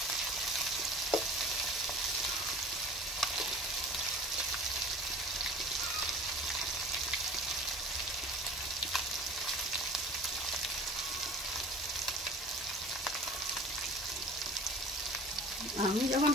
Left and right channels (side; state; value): both; normal; correlation 0.42